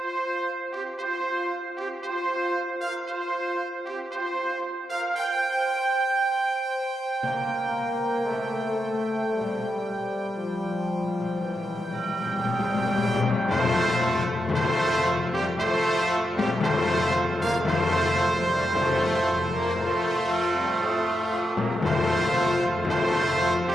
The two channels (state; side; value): normal; both; correlation 0.86